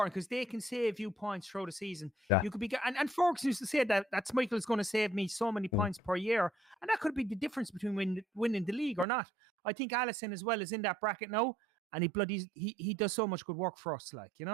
because they can save you points throughout the season. You could be, and Ferguson used to say that Schmeichel is going to save me so many points per year, and that could be the difference between winning the league or not. I think Alisson as well is in that bracket now, and he does so much good work for us, like, you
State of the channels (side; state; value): left; drops out; at 9.1 s